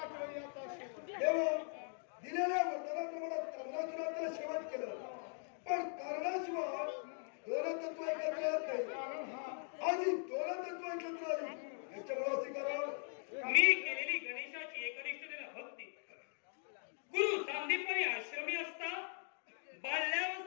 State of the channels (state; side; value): silent; right; 51 dB below the other